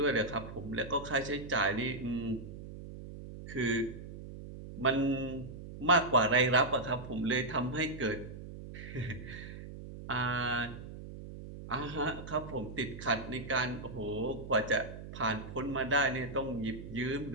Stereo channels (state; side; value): noise; right; hum, 12 dB below the sound